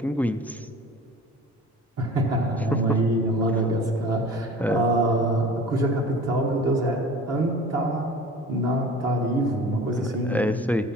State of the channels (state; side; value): normal; both; correlation 0.42